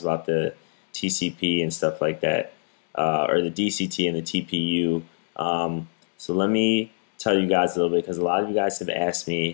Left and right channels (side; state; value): right; silent; digital silence